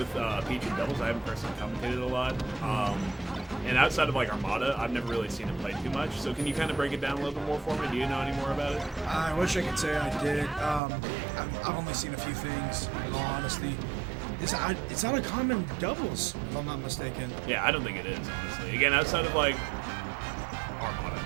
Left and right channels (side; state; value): left; drops out; at 10.8 s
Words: Peach and Devils. I haven't personally commentated a lot. And outside of like Armada, I've never really seen him play too much. So can you kind of break it down a little bit more for me? Do you know any more about it? I wish I could say I did. I've only seen a few things, in all honesty. It's not a common doubles, if I'm not mistaken. Yeah, I don't think it is, honestly. Again, outside of like Armada